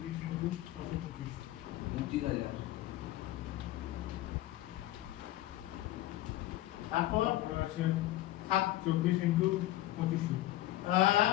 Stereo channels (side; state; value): right; quieter; 15.4 dB